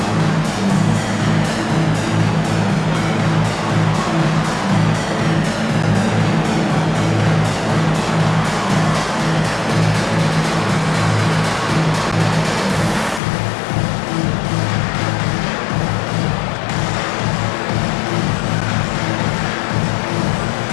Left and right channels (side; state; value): right; drops out; at 13.2 s